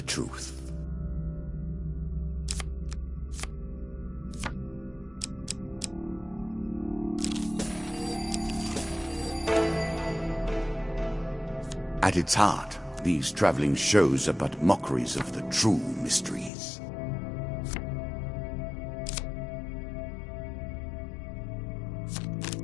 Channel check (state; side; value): drops out; right; at 16.5 s